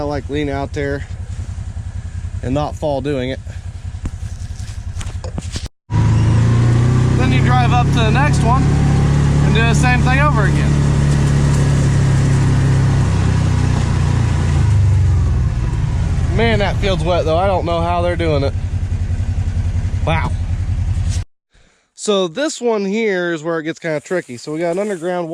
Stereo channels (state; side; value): identical; both; correlation 1.00